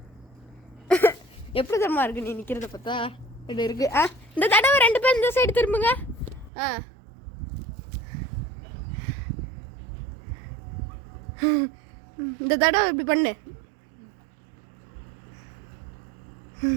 எப்படி தரமா இருக்கு நீ நிக்கிறத பார்த்தா? இது இருக்கு. இந்த தடவை 2 பேர் இந்த சைடு திரும்புங்க. இந்த தடவை இப்படி பண்ணு.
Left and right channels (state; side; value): drops out; left; at 6.5 s